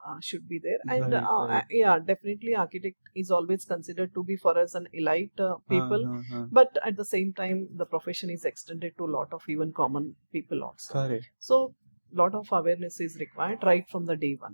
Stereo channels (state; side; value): inverted; both; correlation -1.00